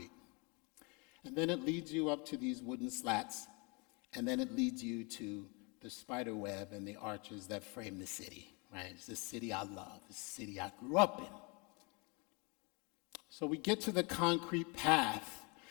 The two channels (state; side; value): quieter; right; 30.8 dB